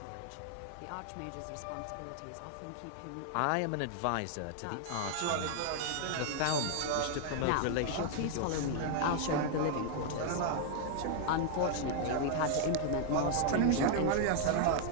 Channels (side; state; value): both; different; correlation 0.00